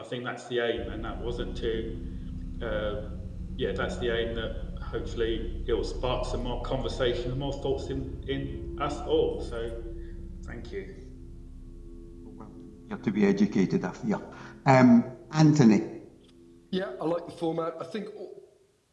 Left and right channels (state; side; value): identical; both; correlation 1.00